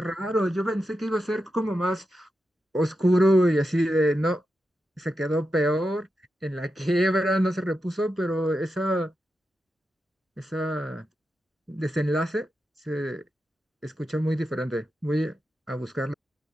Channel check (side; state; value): both; normal; correlation 0.88